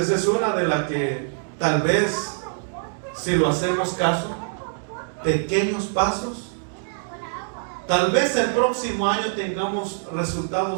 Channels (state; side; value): silent; left; digital silence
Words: es una de las que tal vez, si lo hacemos caso, pequeños pasos, tal vez el próximo año tengamos